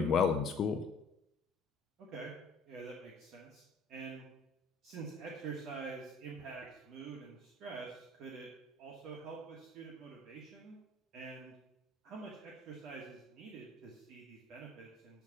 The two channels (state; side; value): quieter; right; 3.5 dB